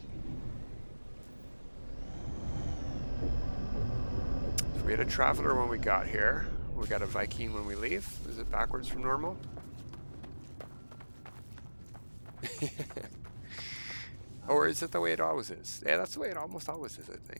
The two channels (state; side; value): inverted; both; correlation -1.00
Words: So we had a Traveler when we got here. We got a Viking when we leave. Is it backwards from normal? Or is it the way it always is? Yeah, that's the way it almost always is, I